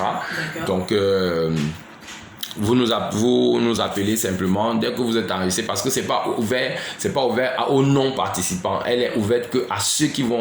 Donc vous nous appelez simplement dès que vous êtes enregistré, parce que c'est pas ouvert aux non participants. Elle est ouverte que à ceux qui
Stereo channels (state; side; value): identical; both; correlation 1.00